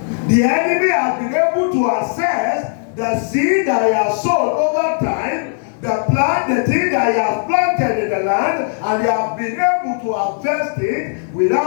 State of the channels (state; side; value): silent; right; digital silence